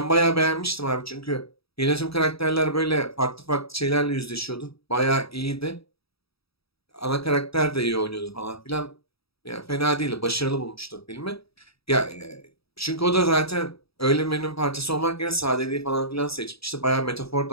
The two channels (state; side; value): late; right; 0.77 ms